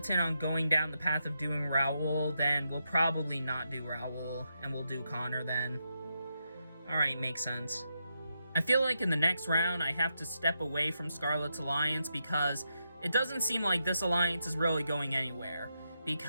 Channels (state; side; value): inverted; both; correlation -0.84